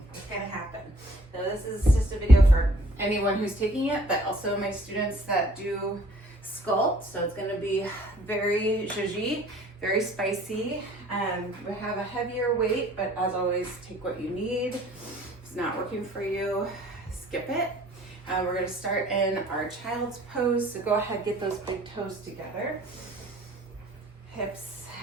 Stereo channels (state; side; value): normal; both; correlation 0.56